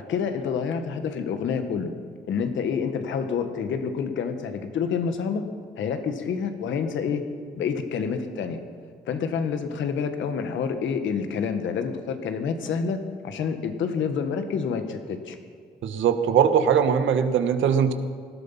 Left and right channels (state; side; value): normal; both; correlation 0.35